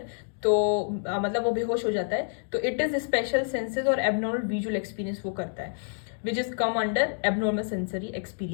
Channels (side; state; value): right; silent; digital silence